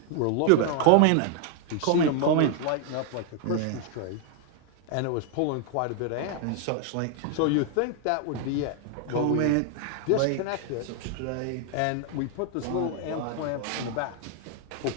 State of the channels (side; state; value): both; different; correlation 0.00